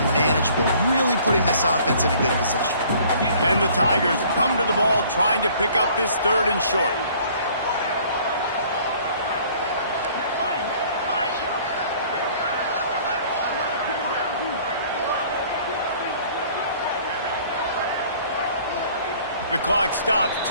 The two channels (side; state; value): both; inverted; correlation -0.55